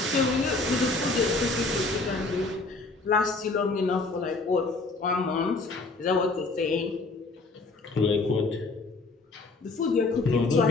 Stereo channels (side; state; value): right; quieter; 3.5 dB